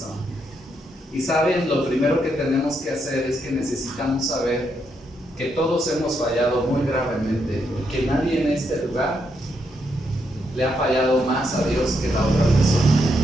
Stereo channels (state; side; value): normal; both; correlation 0.79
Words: Y saben, lo primero que tenemos que hacer es que necesitamos saber que todos hemos fallado muy gravemente y que nadie en este lugar le ha fallado más a Dios que la otra persona.